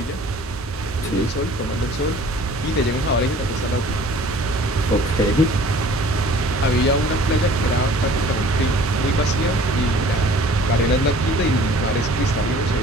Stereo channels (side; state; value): both; normal; correlation 0.50